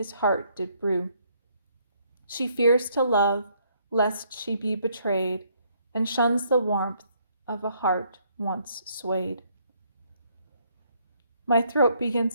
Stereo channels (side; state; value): both; inverted; correlation -0.68